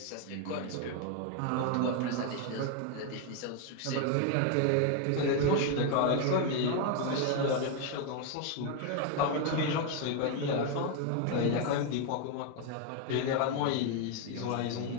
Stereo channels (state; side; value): different; both; correlation 0.01